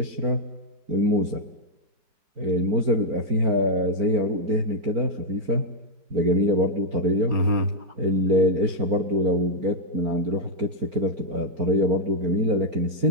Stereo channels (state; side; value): late; left; 4.4 ms